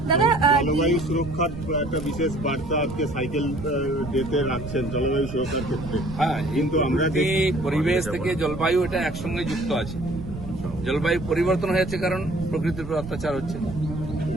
জলবায়ু সুরক্ষার একটা বিশেষ বার্তা আজকে সাইকেল ডেতে রাখছেন জলবায়ু সুরক্ষার ক্ষেত্রে। হ্যাঁ, কিন্তু আমরা পরিবেশ থেকে জলবায়ু এটা একসঙ্গে যুক্ত আছে। জলবায়ু পরিবর্তন হয়েছে কারণ প্রকৃতির উপর অত্যাচার হচ্ছে,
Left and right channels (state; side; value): noise; right; rumble, 10 dB below the sound